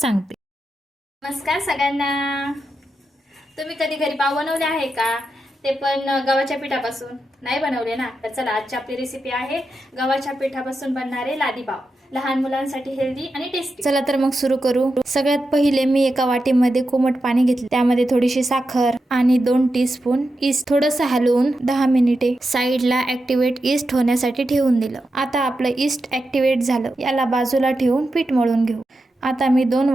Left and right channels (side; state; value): both; normal; correlation 0.88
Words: नमस्कार सगळ्यांना. तुम्ही कधी घरी पाव बनवले आहे का? ते पण गव्हाच्या पिठापासून? नाही बनवले ना? तर चला आजची आपली रेसिपी आहे गव्हाच्या पिठापासून बनणारे लादी पाव. लहान मुलांसाठी हेल्दी आणि टेस्टी. चला तर मग सुरू करू. सगळ्यात पहिले मी एका वाटीमध्ये कोमट पाणी घेतले. त्यामध्ये थोडीशी साखर आणि 2 टीस्पून ईस्ट थोडंसं हलवून 10 मिनिटे साईडला ऍक्टिव्हेट ईस्ट होण्यासाठी ठेवून दिलं. आता आपलं ईस्ट ऍक्टिव्हेट झालं. याला बाजूला ठेवून पीठ मळून घेऊ. आता मी 2